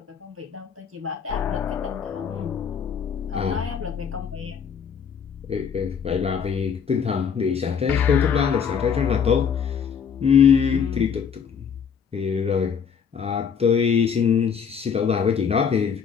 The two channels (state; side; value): quieter; right; 7.0 dB